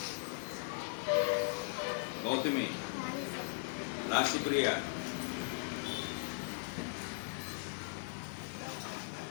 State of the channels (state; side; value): silent; right; digital silence